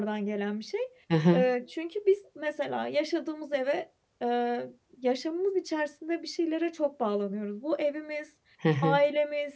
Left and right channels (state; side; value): identical; both; correlation 1.00